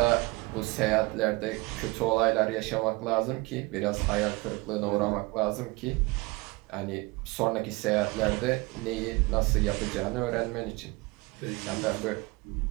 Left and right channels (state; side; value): quieter; left; 24.2 dB